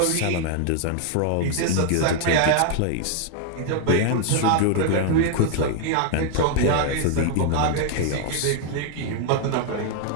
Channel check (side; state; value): both; different; correlation 0.00